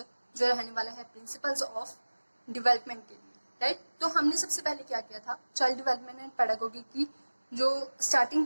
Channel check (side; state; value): both; inverted; correlation -1.00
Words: जो रहने वाला है प्रिंसिपल्स ऑफ डेवलपमेंट के लिए। राइट, तो हमने सबसे पहले क्या किया था, चाइल्ड डेवलपमेंट एंड पैडागोगी की जो स्टार्टिंग